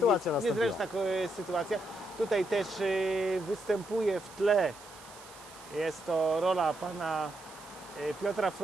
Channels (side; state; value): right; noise; hiss, 19 dB below the sound